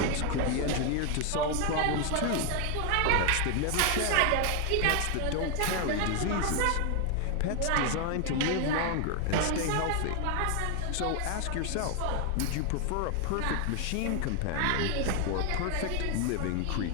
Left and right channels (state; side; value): different; both; correlation 0.00